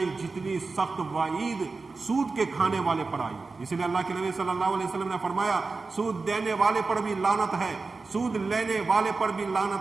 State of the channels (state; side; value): quieter; left; 4.0 dB